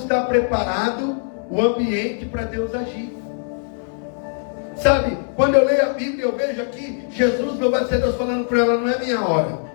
preparado o ambiente para Deus agir. Sabe, quando eu leio a Bíblia, eu vejo aqui Jesus, louvado seja Deus, falando para ela, não é minha hora.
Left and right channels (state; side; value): silent; right; 65 dB below the other